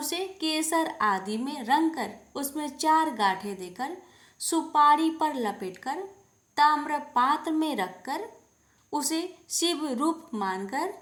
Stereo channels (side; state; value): both; identical; correlation 1.00